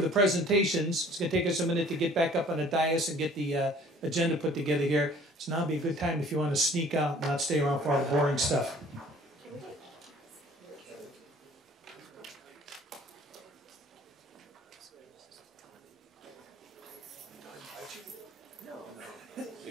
presentations, it's going to take us a minute to get back up on the dais and get the agenda put together here. So now would be a good time if you want to sneak out and not stay around for all the boring stuff.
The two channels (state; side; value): normal; both; correlation 0.52